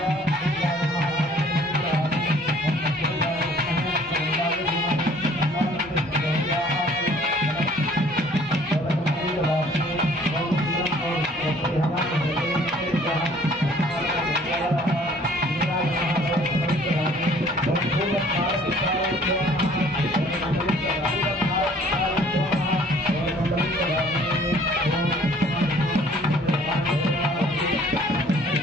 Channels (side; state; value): both; normal; correlation 0.56